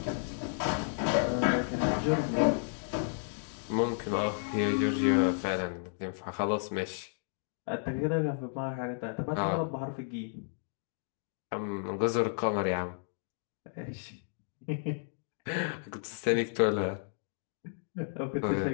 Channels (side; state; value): right; silent; digital silence